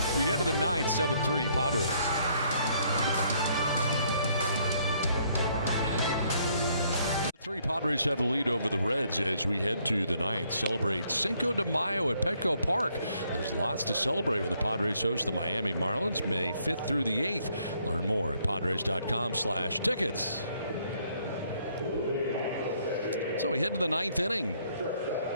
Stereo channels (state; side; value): inverted; both; correlation -0.68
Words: We head to the 9th, 7-3 Padres. The Padres have the lead over the Reds as we head to the 9th. Celebrate Cinco de Mayo at Petco Park. There's lots to celebrate when the Padres host the Miami Marlins May 5th through the 8th. Learn more at Padres.com/tickets. So we head to the 9th inning.